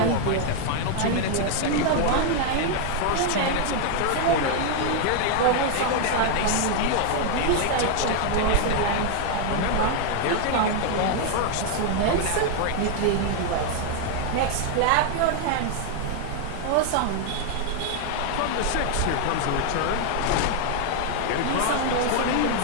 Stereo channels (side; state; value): both; different; correlation 0.00